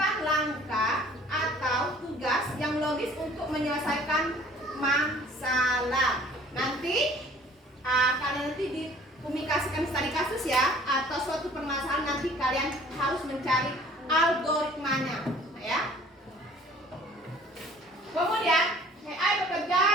langkah atau tugas yang logis untuk menyelesaikan masalah. Nanti kalian dikomunikasikan studi kasus ya, atau suatu permasalahan nanti kalian harus mencari algoritmanya, nah, ya. Kemudian AI bekerja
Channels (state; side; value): normal; both; correlation 0.52